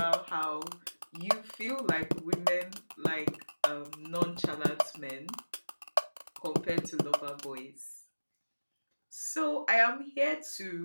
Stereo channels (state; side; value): inverted; both; correlation -1.00